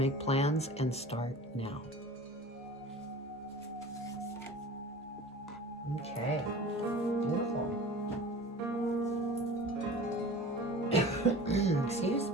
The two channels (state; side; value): normal; both; correlation 0.39